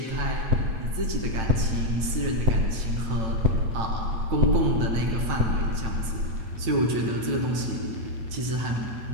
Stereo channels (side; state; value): left; late; 8.9 ms